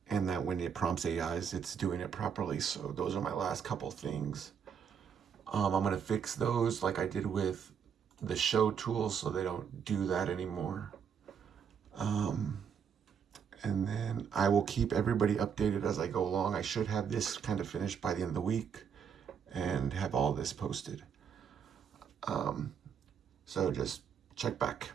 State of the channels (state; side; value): quieter; left; 7.3 dB